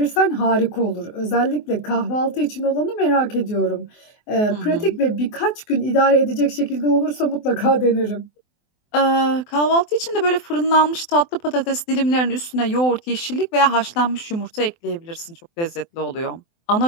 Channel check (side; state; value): right; late; 24 ms